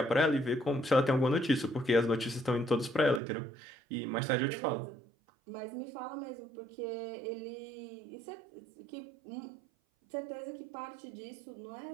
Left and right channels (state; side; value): drops out; left; at 3.2 s